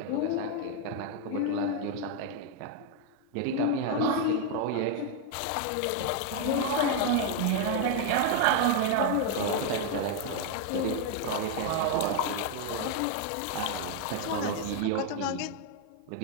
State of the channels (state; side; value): different; both; correlation 0.01